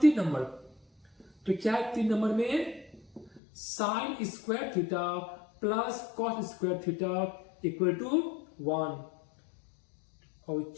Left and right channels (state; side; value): drops out; right; at 3.4 s